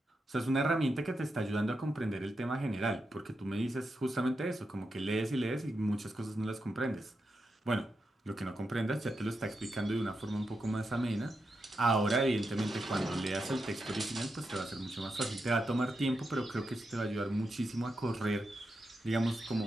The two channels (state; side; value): normal; both; correlation 0.86